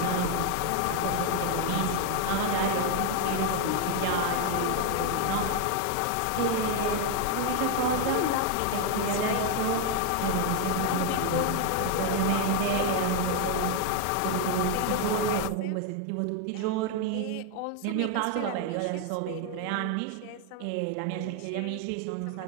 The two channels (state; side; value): different; both; correlation 0.01